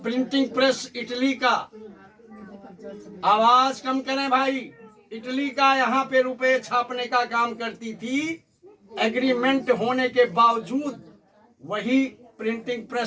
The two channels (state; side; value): identical; both; correlation 1.00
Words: प्रिंटिंग प्रेस इटली का, आवाज कम करें भाई, इटली का यहाँ पे रुपए छापने का काम करती थी, एग्रीमेंट होने के बावजूद वही प्रिंटिंग